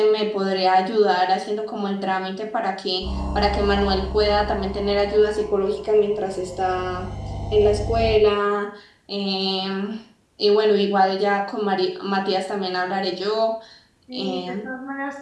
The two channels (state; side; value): identical; both; correlation 1.00